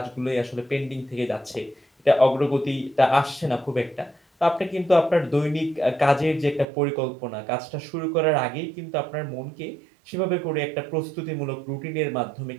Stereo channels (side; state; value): left; drops out; at 6.7 s